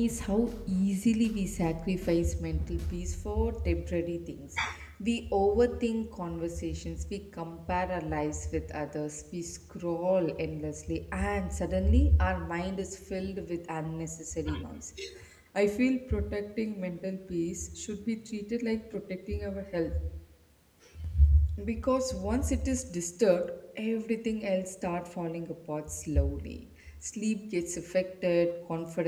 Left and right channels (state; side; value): identical; both; correlation 1.00